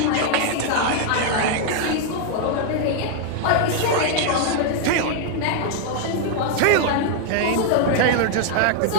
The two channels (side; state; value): both; different; correlation 0.00